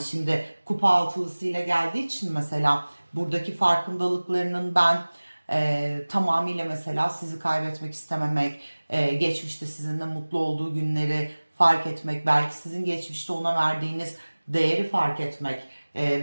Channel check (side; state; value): both; inverted; correlation -1.00